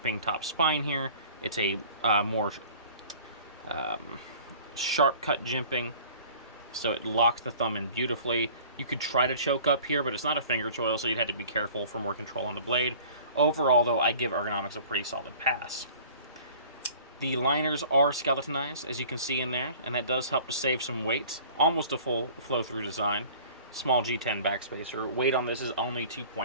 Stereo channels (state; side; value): inverted; both; correlation -0.47